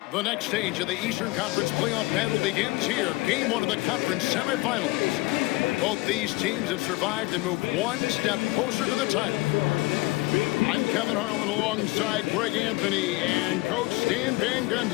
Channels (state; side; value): quieter; right; 21.9 dB